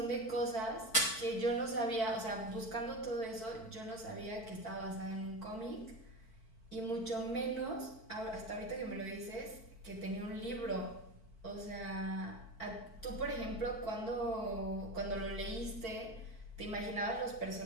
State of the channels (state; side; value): late; right; 4.5 ms